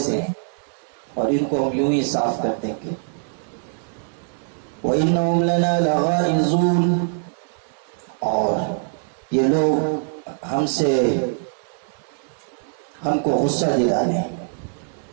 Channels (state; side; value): silent; left; 61 dB below the other